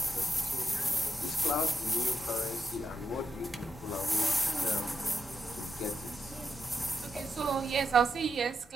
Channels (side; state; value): both; normal; correlation 0.84